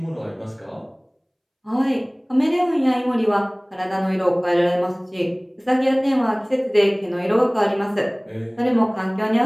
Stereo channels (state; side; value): identical; both; correlation 1.00